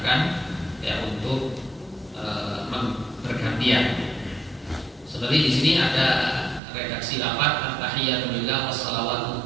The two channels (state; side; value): drops out; left; at 6.6 s